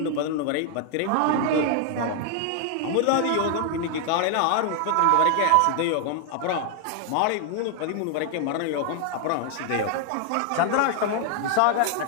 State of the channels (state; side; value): different; both; correlation 0.00